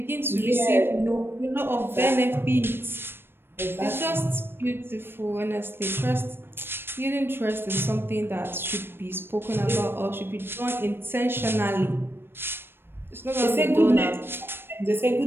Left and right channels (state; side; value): late; left; 0.10 ms